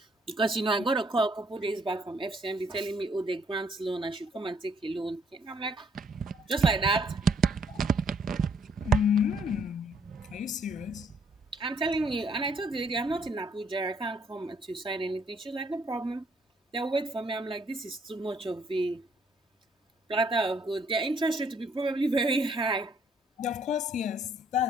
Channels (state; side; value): normal; both; correlation 0.66